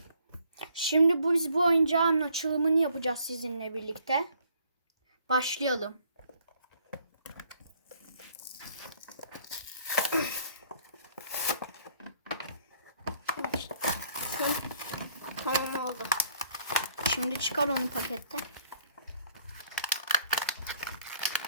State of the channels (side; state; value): both; inverted; correlation -0.64